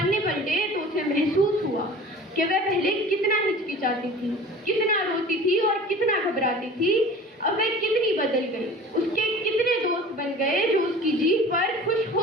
पलटे तो उसे महसूस हुआ कि वह पहले कितना हिचकिचाती थी, कितना रोती थी और कितना घबराती थी। अब वह कितनी बदल गई। उसके कितने दोस्त बन गए जो उसकी जीत पर खुश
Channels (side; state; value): both; normal; correlation 0.42